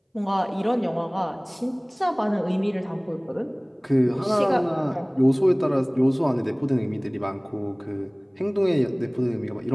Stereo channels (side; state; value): both; identical; correlation 1.00